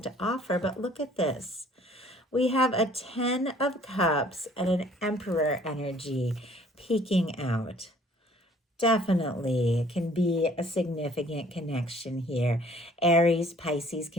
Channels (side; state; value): both; normal; correlation 0.57